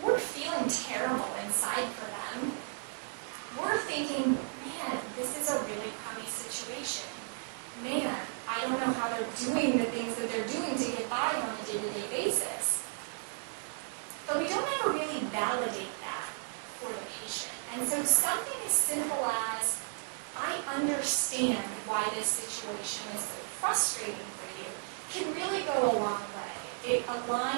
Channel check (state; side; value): silent; left; 55 dB below the other